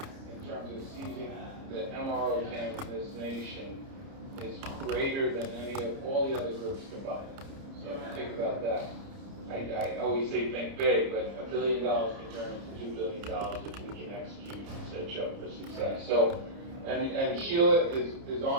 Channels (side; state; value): left; late; 30 ms